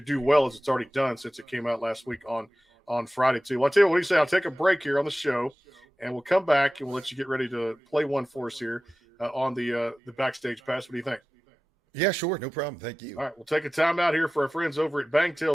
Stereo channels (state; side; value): normal; both; correlation 0.95